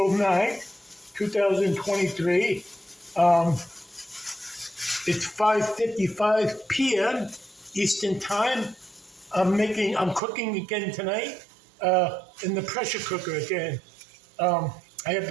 9th, 2023. It's 5:55 p.m. Eastern Time. I'm cooking again tonight in the pressure cooker again. I have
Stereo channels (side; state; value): left; drops out; at 10.2 s